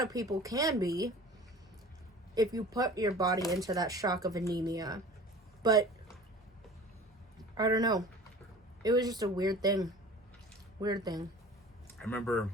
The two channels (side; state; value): both; normal; correlation 0.42